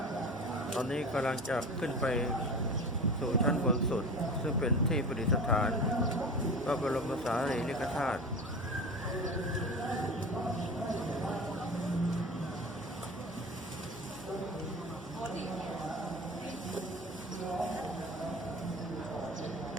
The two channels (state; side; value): normal; both; correlation 0.33